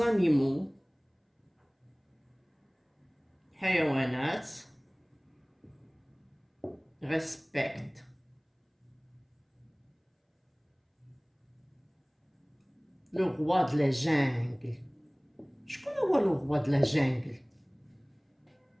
حيوانات respectent le roi de la jungle. شكون هو le roi de la jungle؟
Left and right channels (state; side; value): identical; both; correlation 1.00